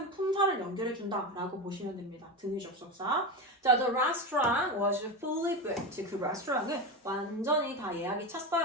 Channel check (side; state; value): both; normal; correlation 0.19